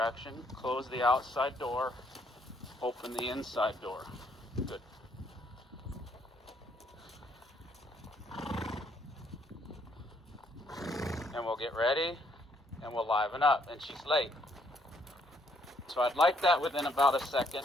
close the outside door, open the inside door. Good. And we'll get ready, and we'll liven up, and she's late. So I'd like that within about a second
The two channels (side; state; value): both; normal; correlation 0.69